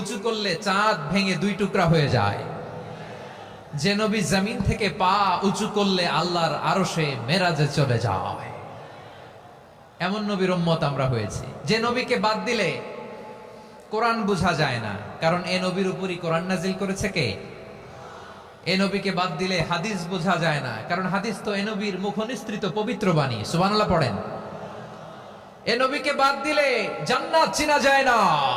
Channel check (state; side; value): identical; both; correlation 1.00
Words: উঁচু করলে চাঁদ ভেঙে 2 টুকরা হয়ে যায়, যে নবী জমিন থেকে পা উঁচু করলে আল্লাহর আরশে মেরাজে চলে যায়, এমন নবীর উম্মত আমরা হয়েছি। যে নবীকে বাদ দিলে কোরআন বোঝা যায় না, কারণ এ নবীর উপরই কোরআন নাজিল করেছে কে? এ নবীকে বাদ দিলে হাদিস বোঝা যায় না, কারণ হাদিস তো এ নবীর মুখনিসৃত পবিত্র বাণী। সুবহানাল্লাহ পড়েন। এ নবীকে বাদ দিলে জান্নাত চেনা যায় না,